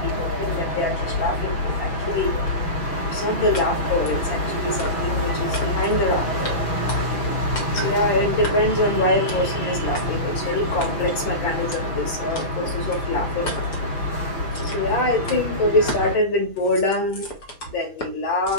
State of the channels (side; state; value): right; late; 6.0 ms